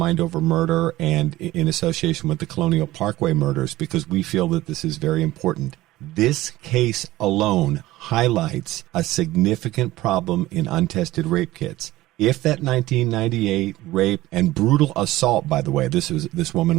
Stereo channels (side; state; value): left; quieter; 16.6 dB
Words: Over Murder and in association with the Colonial Parkway Murders, because we feel that this is very important. This case alone highlights a significant problem in untested rape kits. If that 1998 rape and brutal assault, by the way, this